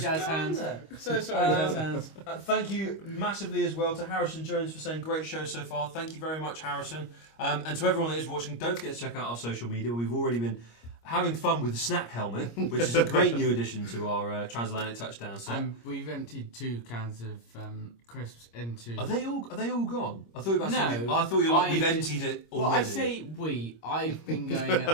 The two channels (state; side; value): late; right; 25 ms